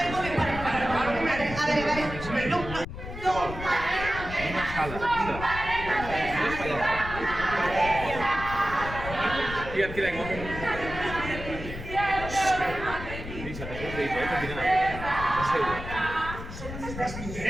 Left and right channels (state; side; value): noise; left; rumble, 9 dB below the sound